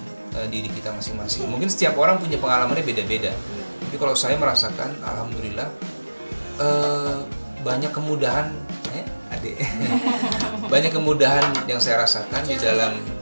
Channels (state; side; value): inverted; both; correlation -1.00